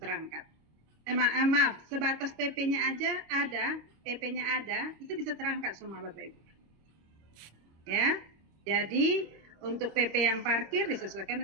Maaf, sebatas PP-nya aja ada, PP-nya ada, itu bisa terangkat semua Bapak Ibu. Ya, jadi untuk PP yang parkir disesuaikan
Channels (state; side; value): late; left; 25 ms